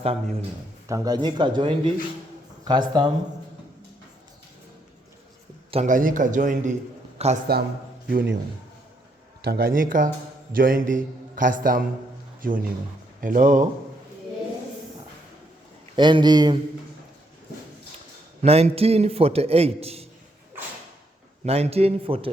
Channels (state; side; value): normal; both; correlation 0.74